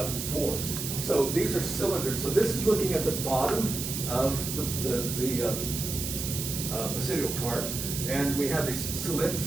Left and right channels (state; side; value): noise; right; hiss, 4 dB below the sound